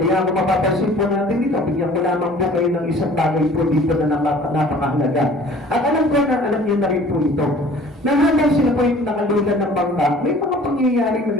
kung mapapansin po natin dito, bigyan ko lamang po kayo ng isang bagay po dito na napakahalaga. At alam ko na, alam niyo na rin po ito. Nahabang sila po yung nakalulan ng bangka, may mga pangyayaring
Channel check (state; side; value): normal; both; correlation 0.49